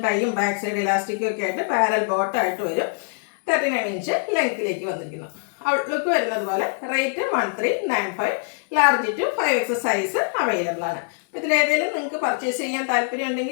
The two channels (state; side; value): silent; right; 63 dB below the other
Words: ടൈയും ബാക്ക് സൈഡ് ഇലാസ്റ്റിക്കും ഒക്കെ ആയിട്ട് പാരൽ ബോട്ടം ആയിട്ട് വരും. 39 ഇഞ്ച് ലെങ്ത്തിലേക്ക് വന്നിരിക്കുന്നു. ഔട്ട്ലുക്ക് വരുന്നത് പോലെ. Rate 1395. Large to 5X size available ആണ്. ഇതിലേതെങ്കിലും നിങ്ങൾക്ക് പർച്ചേസ് ചെയ്യാൻ താല്പര്യം